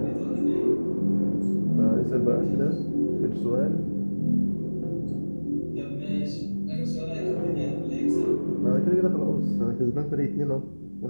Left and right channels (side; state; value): both; inverted; correlation -1.00